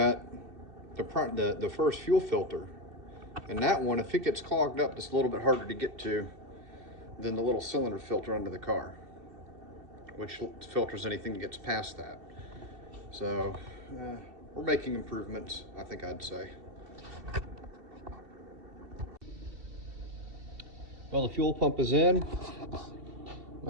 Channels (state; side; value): late; left; 2.7 ms